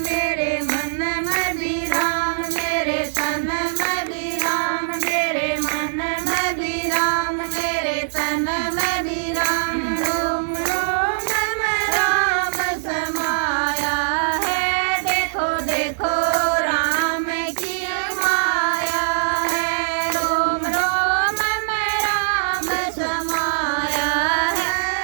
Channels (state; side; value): silent; left; 61 dB below the other